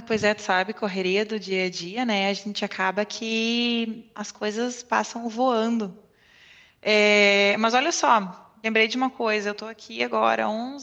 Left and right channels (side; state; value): both; identical; correlation 1.00